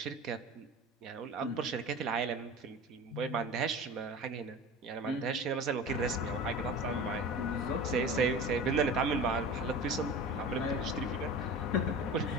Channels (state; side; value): normal; both; correlation 0.34